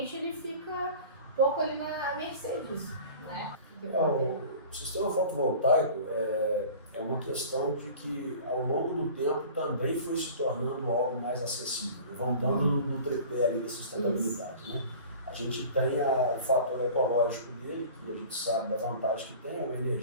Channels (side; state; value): both; inverted; correlation -0.42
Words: ele fica um pouco ali na mercê disso, né? O sistema fotovoltaico é uma questão de que ao longo do tempo também foi se tornando algo mais acessível, né? Voltando no tripé ali da sustentabilidade, né? A gente tem o fator ecológico dele, que a gente sabe da vantagem que tem, é uma